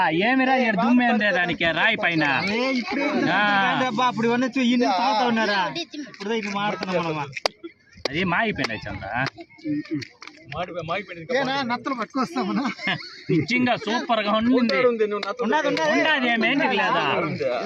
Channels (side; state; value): both; identical; correlation 1.00